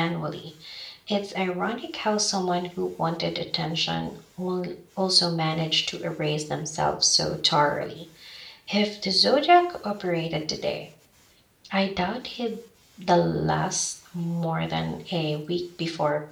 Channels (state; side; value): identical; both; correlation 1.00